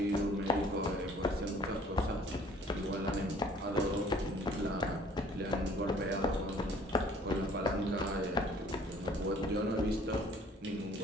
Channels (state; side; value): normal; both; correlation 0.55